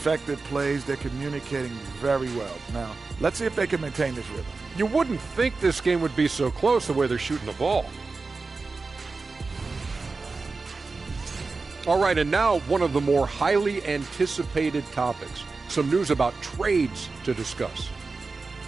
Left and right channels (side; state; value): left; quieter; 4.0 dB